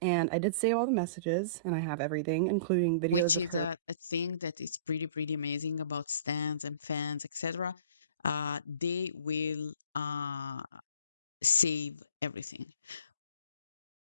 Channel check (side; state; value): both; inverted; correlation -0.42